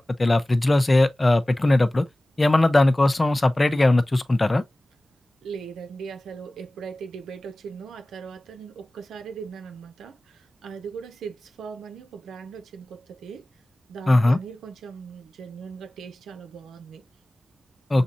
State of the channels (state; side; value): normal; both; correlation 0.97